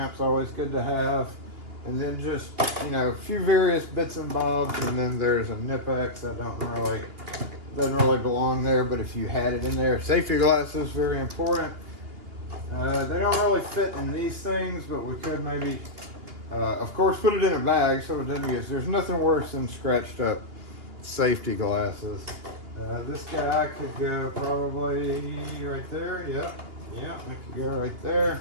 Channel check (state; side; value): late; left; 2.8 ms